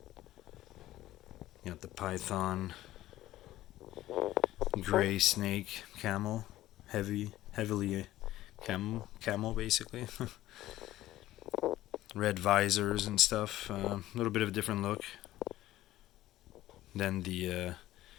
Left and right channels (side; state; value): right; quieter; 15.0 dB